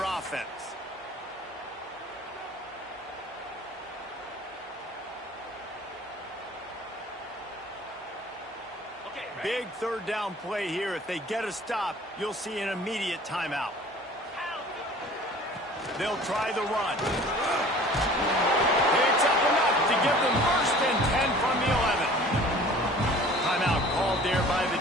offense. Big third down play here. If they get a stop, you'll see an immediate timeout. They'll try the run. It's up enough to give them 1st and 10 from the 11. Timeout called there by the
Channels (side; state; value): both; normal; correlation 0.47